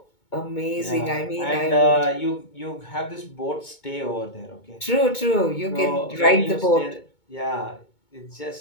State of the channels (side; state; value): right; late; 2.2 ms